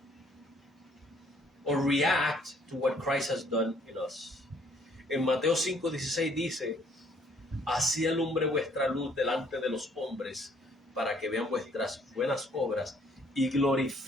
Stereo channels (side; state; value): both; normal; correlation 0.63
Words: or react to what Christ has done in us. En Mateo 5:16 dice, así alumbre vuestra luz delante de los hombres, para que vean vuestras buenas obras y